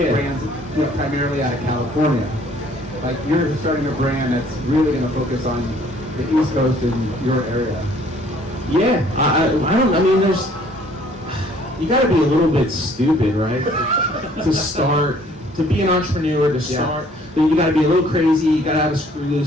primarily out of California. Like you're starting a brand that's really going to focus on the East Coast and your area. Yeah, I mean, you got to be a little bit stupid, right? To be an entrepreneur, to start, you got to be a little crazy, you got to have a screw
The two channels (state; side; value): normal; both; correlation 0.58